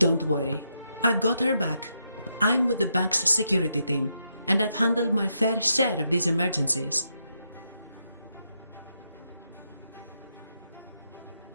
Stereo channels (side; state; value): both; inverted; correlation -0.81